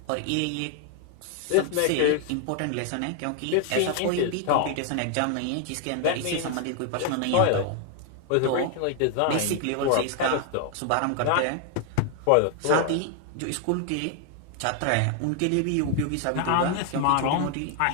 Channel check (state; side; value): different; both; correlation 0.00